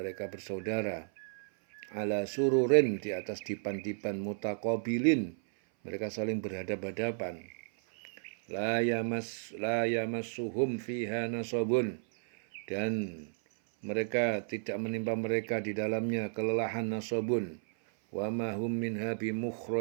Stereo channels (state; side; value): silent; left; 56 dB below the other